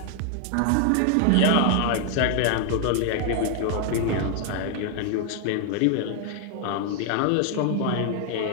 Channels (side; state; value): both; different; correlation 0.00